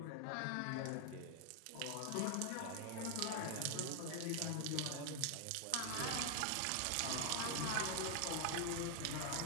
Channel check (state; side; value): different; both; correlation 0.00